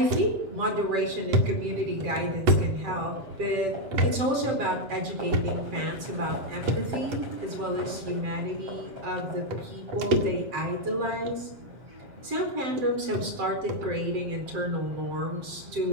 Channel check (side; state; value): left; late; 7.6 ms